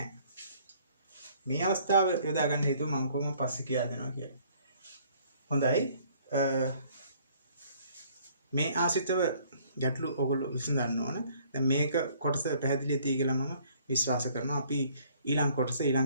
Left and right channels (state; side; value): inverted; both; correlation -0.60